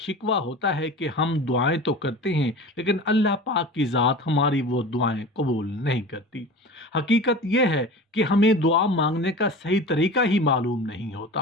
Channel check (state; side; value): normal; both; correlation 0.35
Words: ہوتا ہے کہ ہم دعائیں تو کرتے ہیں لیکن اللہ پاک کی ذات ہماری وہ دعائیں قبول نہیں کرتی۔ حقیقت یہ ہے کہ ہمیں دعا مانگنے کا صحیح طریقہ ہی معلوم نہیں